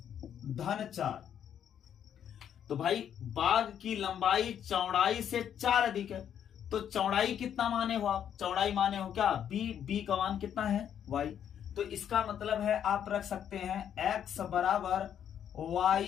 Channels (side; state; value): right; quieter; 9.2 dB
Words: धन 4, तो भाई बाग की लंबाई चौड़ाई से 4 अधिक है, तो चौड़ाई कितना माने हो आप, चौड़ाई माने हो क्या, b का मान कितना है, y, तो इसका मतलब है आप रख सकते हैं x बराबर y